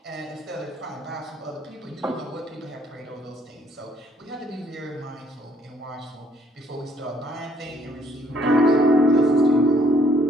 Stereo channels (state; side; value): normal; both; correlation 0.64